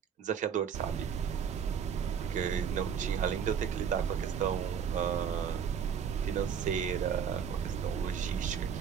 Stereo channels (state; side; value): quieter; left; 7.5 dB